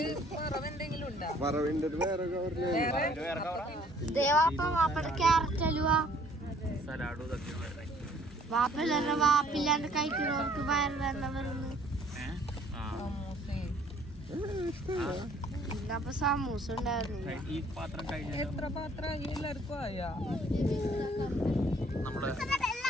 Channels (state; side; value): normal; both; correlation 0.59